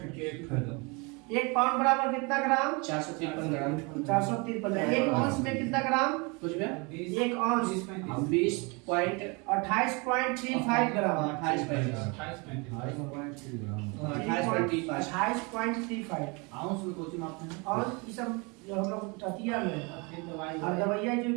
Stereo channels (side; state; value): left; quieter; 29.6 dB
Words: के एक फायदा 1 पाउंड बराबर कितना ग्राम? 453 ग्राम। 453। 1 औंस में कितना ग्राम? कुछ भी 1 औंस 28.35 ग्राम। 28.35 आउंस में कोची मापते हैं और ये सब जो हम लोग ततिया में और दवाइयाँ जो